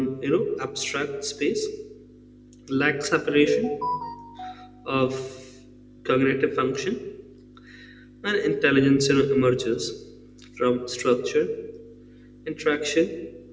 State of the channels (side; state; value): both; identical; correlation 1.00